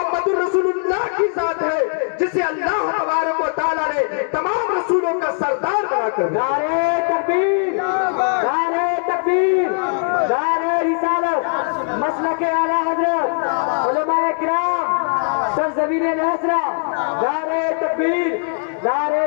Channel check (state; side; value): silent; right; 56 dB below the other